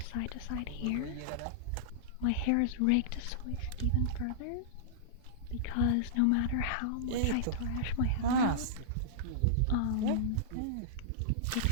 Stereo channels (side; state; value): both; different; correlation -0.02